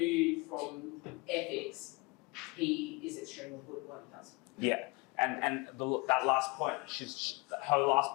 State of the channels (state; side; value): quieter; right; 27.1 dB